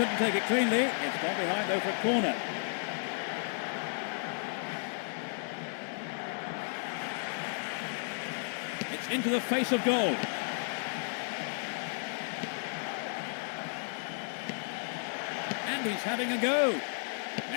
take it cleanly. It's gone behind though for a corner. It's into the face of goal. And he's having a go.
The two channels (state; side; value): silent; right; 56 dB below the other